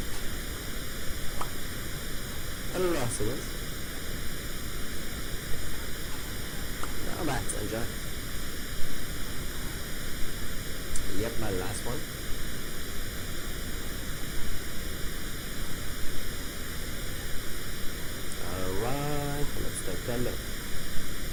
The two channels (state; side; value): identical; both; correlation 1.00